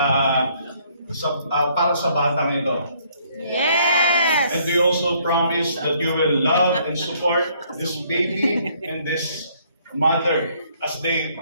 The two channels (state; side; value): inverted; both; correlation -0.65